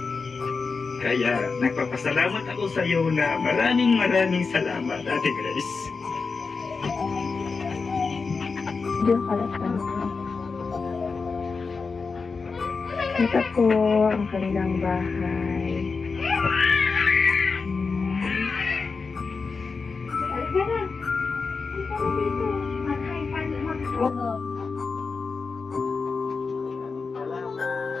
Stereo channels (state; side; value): quieter; right; 4.6 dB